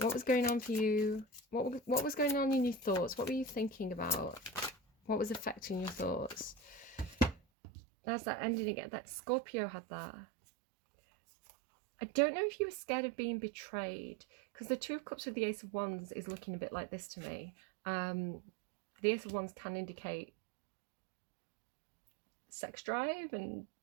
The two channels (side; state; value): left; drops out; at 7.4 s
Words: was going on for you? What was going on in your thoughts? What were you thinking about? What was affecting your thoughts? There's that ending again. That Scorpio had that. I don't know if you were scared of being betrayed, because the Two of Cups with the Ace of Wands is looking a bit like this to me. The Ace of Wands can indicate sex drive and,